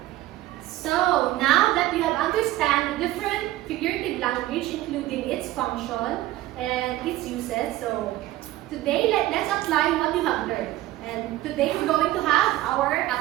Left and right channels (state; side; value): quieter; left; 15.9 dB